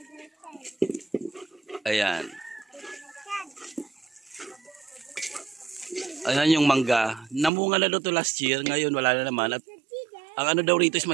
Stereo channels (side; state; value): left; drops out; at 7.5 s